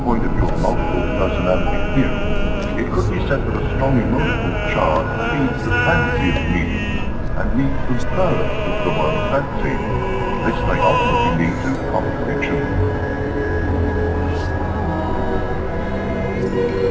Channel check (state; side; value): identical; both; correlation 1.00